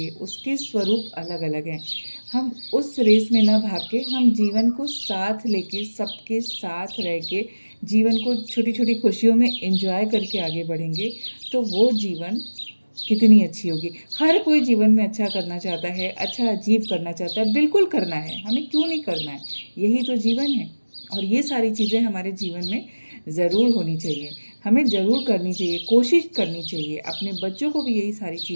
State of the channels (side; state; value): both; inverted; correlation -1.00